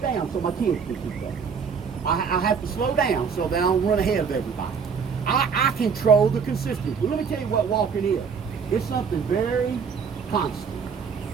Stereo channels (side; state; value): left; quieter; 6.1 dB